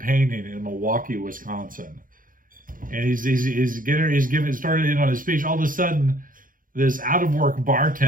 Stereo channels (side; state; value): left; late; 0.40 ms